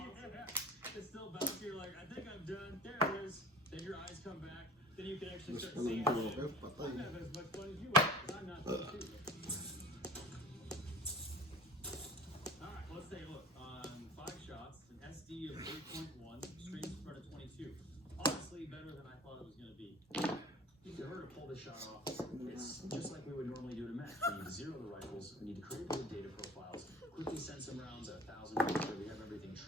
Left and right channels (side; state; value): both; normal; correlation 0.43